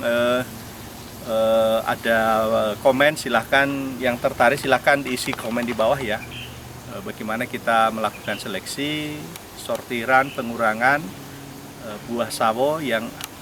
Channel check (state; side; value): identical; both; correlation 1.00